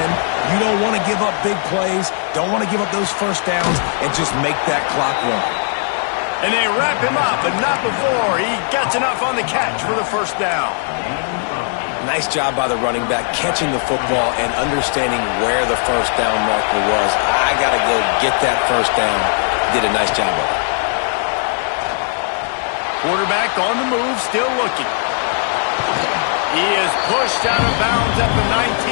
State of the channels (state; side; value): silent; right; digital silence